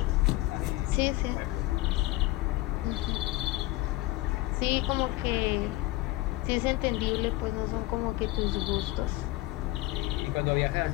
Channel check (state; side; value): quieter; right; 18.8 dB